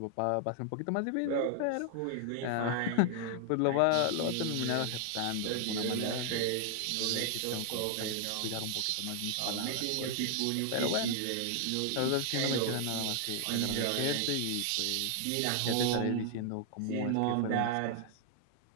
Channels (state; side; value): different; both; correlation 0.00